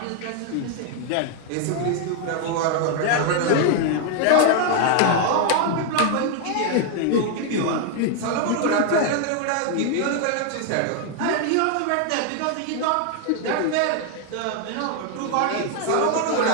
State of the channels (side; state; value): both; different; correlation 0.00